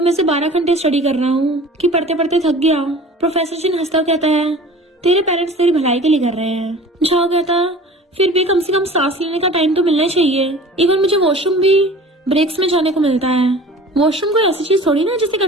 में से 12 घंटे स्टडी कर रहा हूँ कि पढ़ते पढ़ते थक गया। प्रोफेसर चिन हंसता कहता है तेरे पेरेंट्स तेरी भलाई के लिए कर रहे हैं। झाओ कहता फिर भी कम से कम सांस लेने का टाइम तो मिलना चाहिए, इवन मुझे वॉशरूम भी ब्रेक्स में जाने को मिलता है। वॉशरूम कोई ऐसी चीज थोड़ी ना जिसे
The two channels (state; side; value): normal; both; correlation 0.42